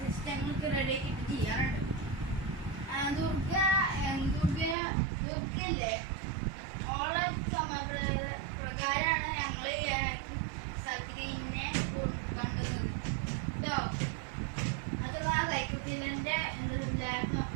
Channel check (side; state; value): left; drops out; at 4.8 s